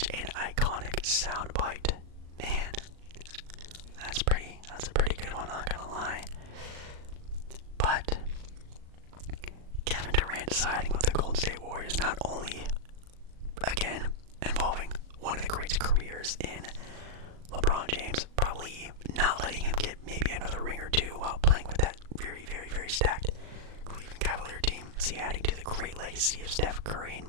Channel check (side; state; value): left; late; 38 ms